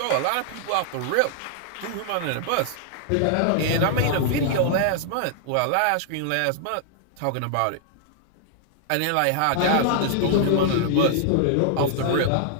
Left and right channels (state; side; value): different; both; correlation -0.01